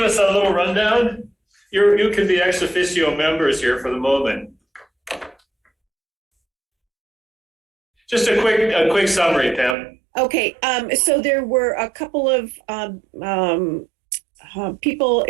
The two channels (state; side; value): drops out; left; at 9.8 s